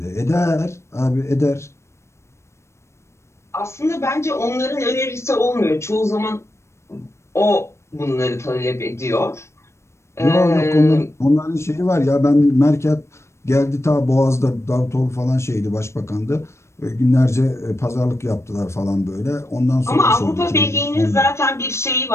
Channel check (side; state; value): right; late; 0.13 ms